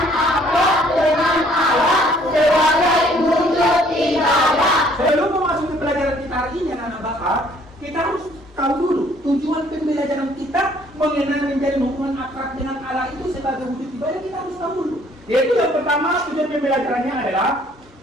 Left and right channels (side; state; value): both; normal; correlation 0.61